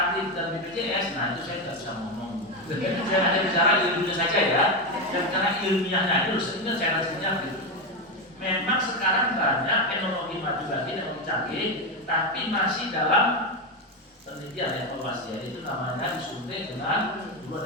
dan BPJS, nah itu saya tidak bisa ngomong. Saya hanya bicara ilmunya saja ya. Dan karena ilmiahnya itu sebenarnya saya rasanya gitu. Memang sekarang banyak teknologi maju lagi, teknologi canggih, tapi masih dalam penelitian evaluasi ya. Itu namanya disuntik dengan dua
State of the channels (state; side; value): normal; both; correlation 0.11